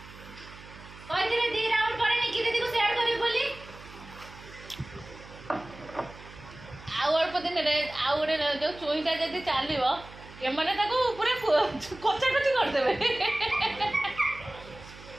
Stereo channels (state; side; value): noise; right; hum, 18 dB below the sound